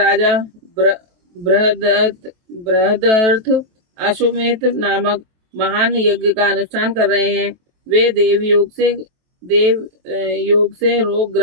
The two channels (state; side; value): late; left; 23 ms